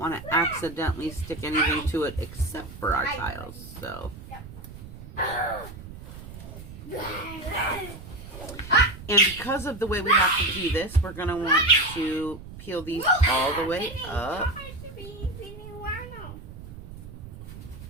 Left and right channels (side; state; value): right; noise; rumble, 14 dB below the sound